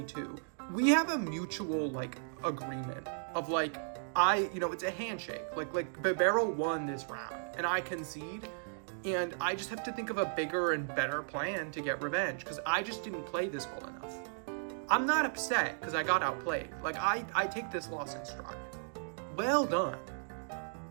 too. We have a mutual, like, agreement of, like, it's a handshake. Like bibarel won this round, and I concede, and I just have to think of a bigger and better plan to get revenge, because I just didn't play this well enough. I'm not upset because I got outplayed. Like, I take this loss in stride. Well done.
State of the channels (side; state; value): left; silent; digital silence